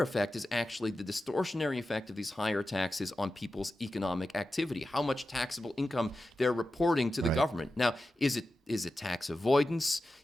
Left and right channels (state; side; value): normal; both; correlation 0.92